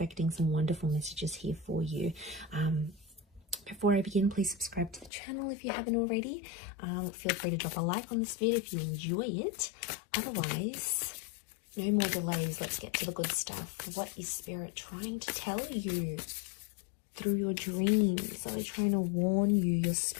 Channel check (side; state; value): right; drops out; at 5.1 s